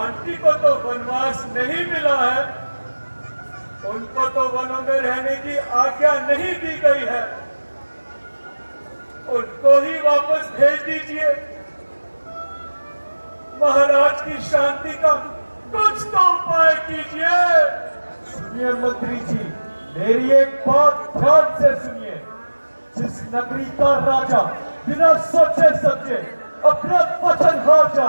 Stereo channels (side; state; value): both; inverted; correlation -1.00